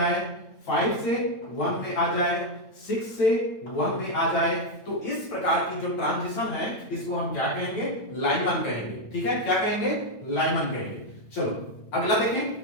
5 से 1 में आ जाए, 6 से 1 में आ जाए। तो इस प्रकार की जो ट्रांजिशन है इसको हम क्या कहेंगे? लाइमन कहेंगे। ठीक है, क्या कहेंगे? लाइमन कहेंगे। चलो अगला देखें,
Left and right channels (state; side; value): late; right; 9.0 ms